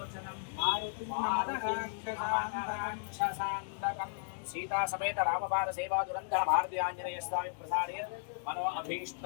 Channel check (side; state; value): right; silent; digital silence